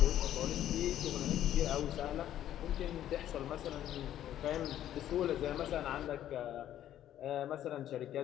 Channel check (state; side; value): quieter; right; 11.8 dB